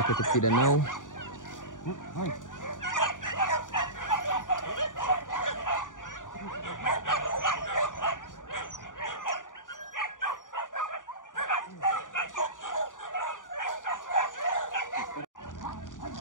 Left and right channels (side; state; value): right; late; 0.88 ms